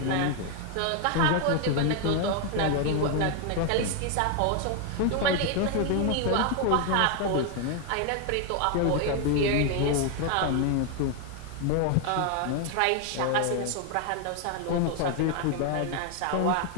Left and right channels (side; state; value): both; different; correlation 0.01